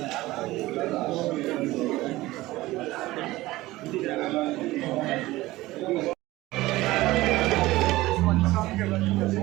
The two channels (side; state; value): left; quieter; 18.2 dB